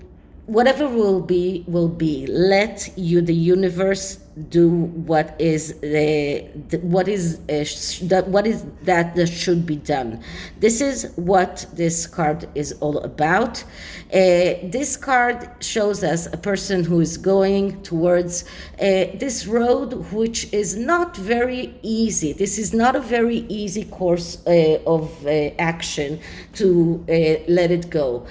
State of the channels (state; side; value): identical; both; correlation 1.00